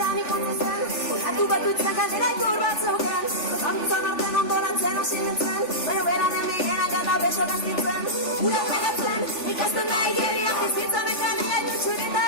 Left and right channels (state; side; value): late; right; 3.4 ms